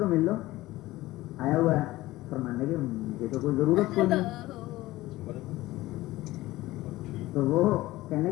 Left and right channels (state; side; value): quieter; right; 17.7 dB